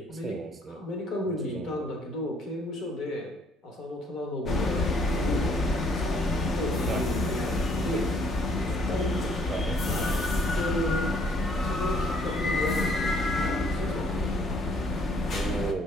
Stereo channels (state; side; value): normal; both; correlation 0.63